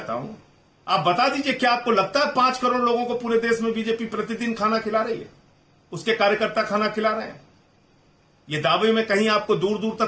हूं, आप बता दीजिए, क्या आपको लगता है 5 करोड़ लोगों को पूरे देश में बीजेपी प्रतिदिन खाना खिला रही है? उसके कार्यकर्ता खाना खिला रहे हैं? ये दावे में कहीं आपको दूर दूर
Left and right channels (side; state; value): both; identical; correlation 1.00